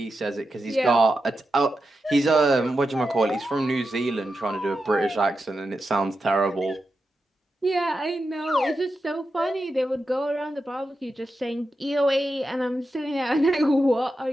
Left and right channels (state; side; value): normal; both; correlation 0.89